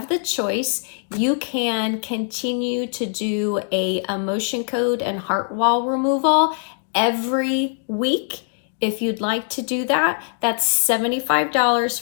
the choice. You can continue to do a emotion code and heart wall removal every week. If you'd like to do that, that's $75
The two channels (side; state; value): right; silent; 61 dB below the other